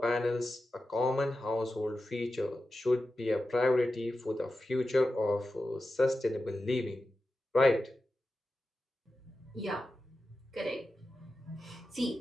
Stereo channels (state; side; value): normal; both; correlation 0.92